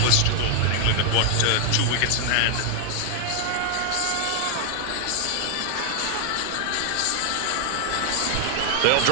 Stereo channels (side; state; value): both; different; correlation 0.00